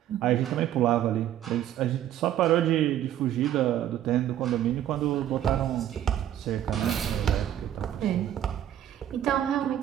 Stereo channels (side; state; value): left; quieter; 11.4 dB